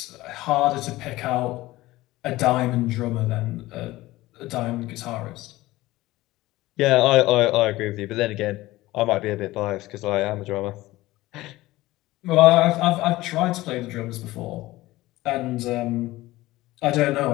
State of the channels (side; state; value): right; quieter; 18.0 dB